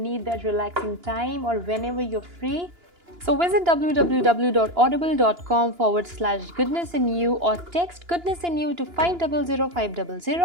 that relaxing time or whenever you're free. So visit www.audible.com/goodnessinu or text goodnessinu to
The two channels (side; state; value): left; late; 2.9 ms